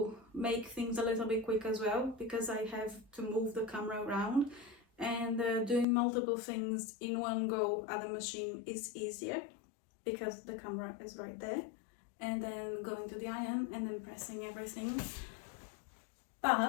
make things a little bit quick as well, because I have to move the camera around, and doing multiple things in one go at the machine is easier because the camera is right there, and then going to the iron and then pressing everything.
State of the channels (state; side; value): drops out; right; at 5.9 s